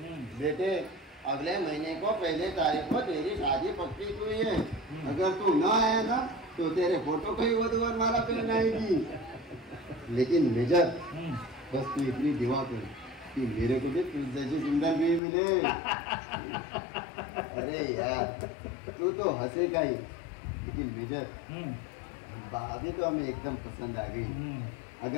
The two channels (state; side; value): drops out; right; at 15.2 s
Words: बेटे अगले महीने को पहले तारीख को तेरी शादी पक्की हुई है। अगर तू न आया ना तो तेरे फोटो को ही वधूवर माला पहनाएगी। लेकिन मेजर बस तू इतनी दुआ कर कि मेरे को भी तुझ जैसी सुंदर भी मिले। अरे यार तू तो हंसेगा ही, लेकिन मेजर भाभी तो हमें एकदम पसंद आ गई।